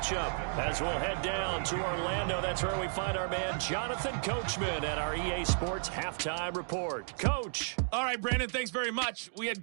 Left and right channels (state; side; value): silent; left; digital silence